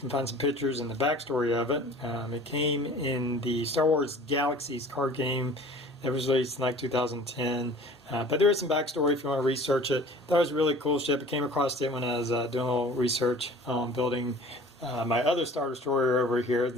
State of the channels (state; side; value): normal; both; correlation 0.46